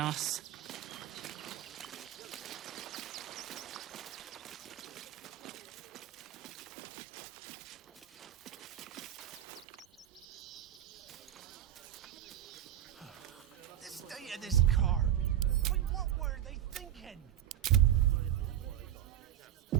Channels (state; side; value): quieter; left; 11.4 dB